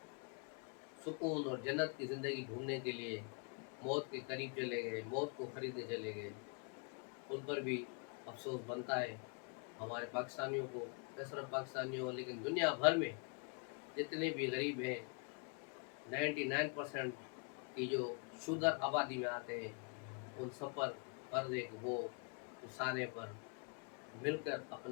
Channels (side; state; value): right; quieter; 37.9 dB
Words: सुकून और जन्नत की ज़िंदगी ढूँढने के लिए मौत के करीब चले गए, मौत को खरीदने चले गए, उन पर भी अफ़सोस बनता है। हमारे पाकिस्तानियों को, न सिर्फ पाकिस्तानियों लेकिन दुनिया भर में जितने भी गरीब हैं, 99% की जो शूदर आबादी में आते हैं, उन सब पर फ़र्ज़ है कि वो रिसाने पर मिलकर